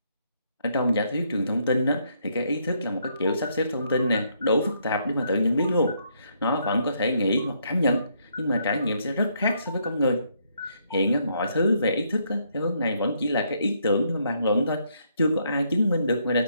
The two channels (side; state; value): both; inverted; correlation -0.73